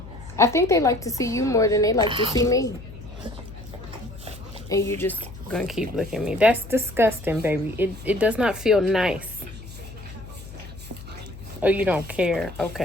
I think they like to see you more than they like to see me. And you just gonna keep looking at me. That's disgusting, baby. It does not feel nice. Oh, you don't care.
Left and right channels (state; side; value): noise; left; hum, 15 dB below the sound